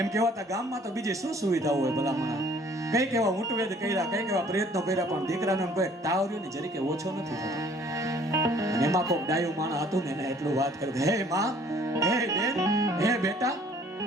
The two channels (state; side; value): normal; both; correlation 0.56